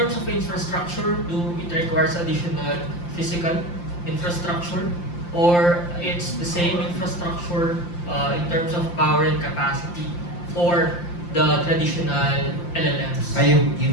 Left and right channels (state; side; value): late; right; 5.8 ms